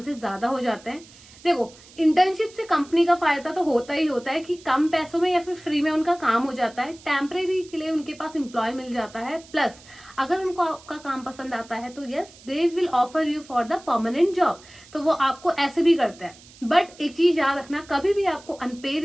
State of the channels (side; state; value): right; noise; hiss, 23 dB below the sound